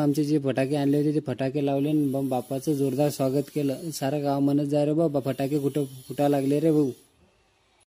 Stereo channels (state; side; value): identical; both; correlation 1.00